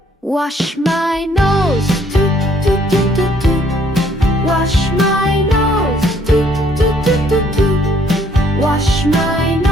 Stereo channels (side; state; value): both; normal; correlation 0.64